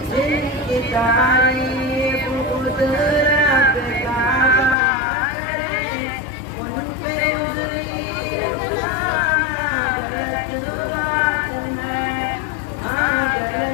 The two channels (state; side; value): drops out; right; at 4.8 s